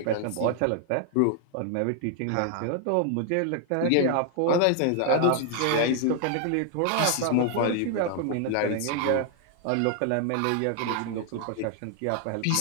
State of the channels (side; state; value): both; different; correlation 0.00